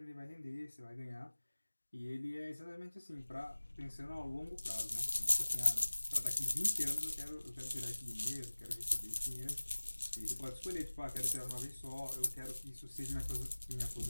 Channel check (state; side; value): inverted; both; correlation -1.00